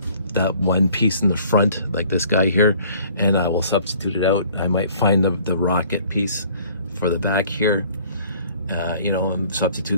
one piece in the front, like this guy here, and I will substitute it out. I might find the rocket piece for the back here, you know, and substitute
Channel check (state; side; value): inverted; both; correlation -0.55